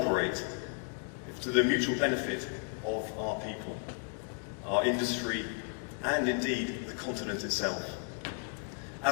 to the mutual benefit of our people, our industry, and indeed the continent itself.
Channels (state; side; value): quieter; right; 39.4 dB